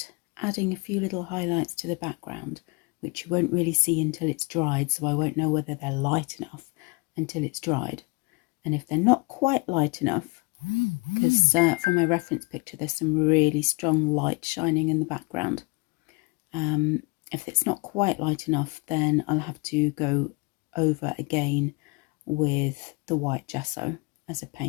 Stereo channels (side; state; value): right; quieter; 28.6 dB